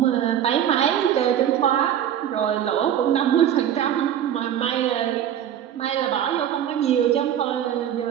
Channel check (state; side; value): quieter; left; 10.2 dB